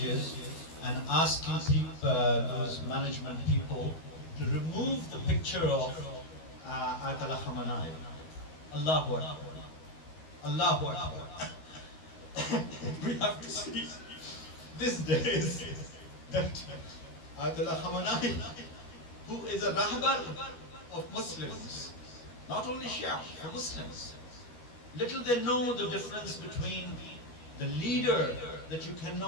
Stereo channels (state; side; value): late; right; 13 ms